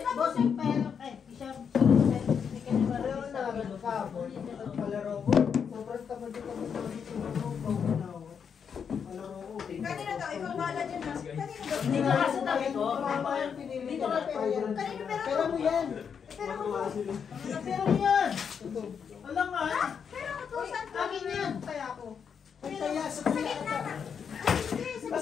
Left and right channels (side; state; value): right; quieter; 6.9 dB